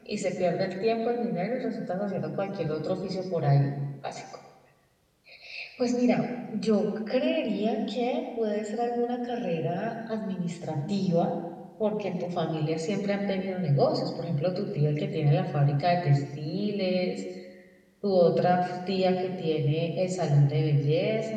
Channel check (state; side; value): identical; both; correlation 1.00